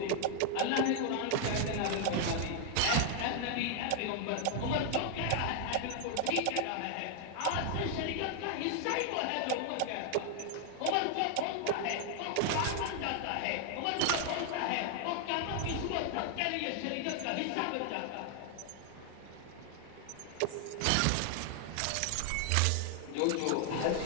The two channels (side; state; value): both; different; correlation 0.00